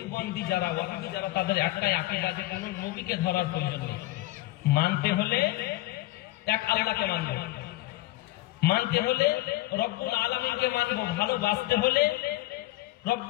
যারা, ওয়াহাবি যারা, তাদের একটাই আকীদা যে কোন নবীকে ধরার প্রয়োজন নেই, মানতে হলে এক আল্লাহকে মানবো, মানতে হলে রব্বুল আলামিনকে মানবো, ভালোবাসতে হলে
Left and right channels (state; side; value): quieter; right; 18.2 dB